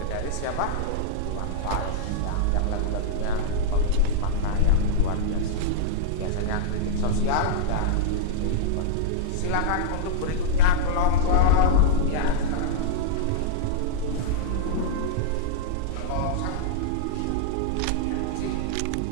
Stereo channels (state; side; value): different; both; correlation -0.02